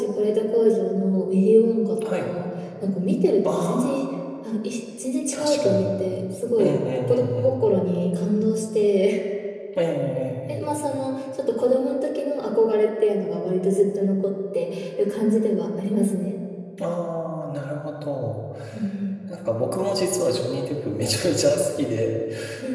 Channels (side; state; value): both; identical; correlation 1.00